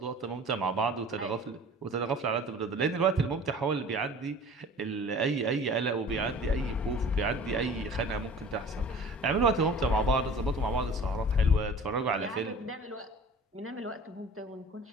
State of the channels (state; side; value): normal; both; correlation 0.44